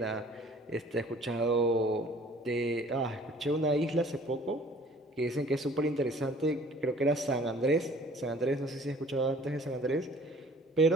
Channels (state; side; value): normal; both; correlation 0.52